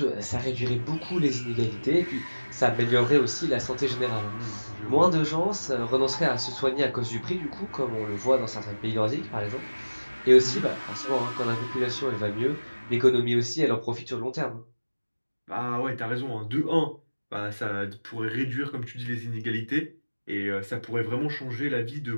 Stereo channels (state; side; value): inverted; both; correlation -1.00